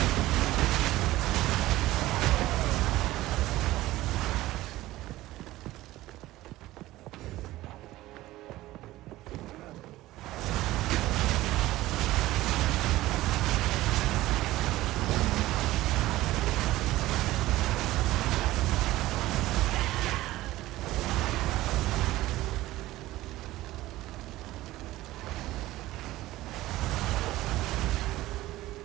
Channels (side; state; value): left; quieter; 16.8 dB